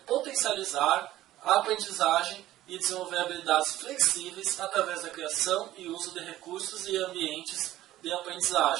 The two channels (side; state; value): left; quieter; 14.7 dB